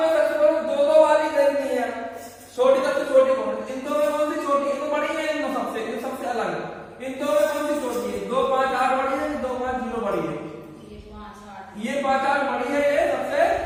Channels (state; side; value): identical; both; correlation 1.00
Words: सबसे पहले 2 वाली देखनी है, छोटी सबसे छोटी कौन है? इन दो में कौन सी छोटी? इन दो बड़ी है, इन दो सबसे, इन सबसे अलग है। इन दो में कौन सी छोटी है? 2, 5, 8 बड़ी है, 2, 5, 0 बड़ी है। ये 5, 8 बड़ी है, ये सबसे